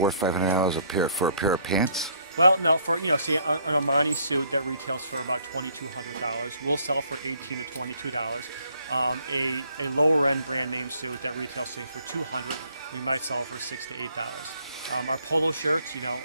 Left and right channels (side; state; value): both; inverted; correlation -0.64